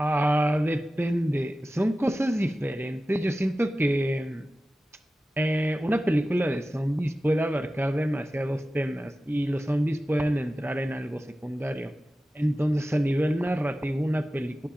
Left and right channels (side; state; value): both; normal; correlation 0.95